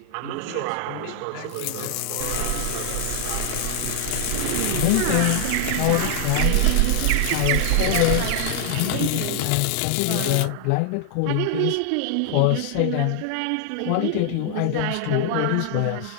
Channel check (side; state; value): both; different; correlation 0.00